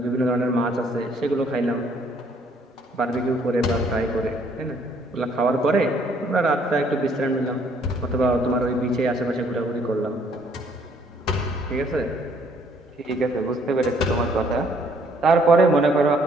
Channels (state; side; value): normal; both; correlation 0.64